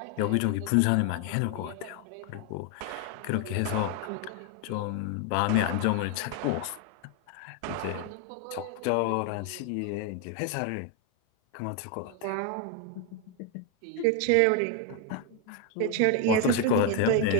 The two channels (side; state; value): both; different; correlation 0.01